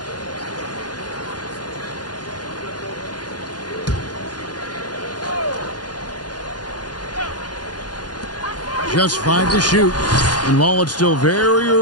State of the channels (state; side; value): late; right; 0.69 ms